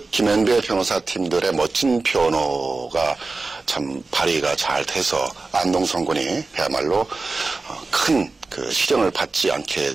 김현배 변호사팀들의 멋진 변호가 참 발휘가 잘 돼서 안동성 군이 그야말로 큰 그 실형을 받지 않게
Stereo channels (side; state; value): left; quieter; 3.7 dB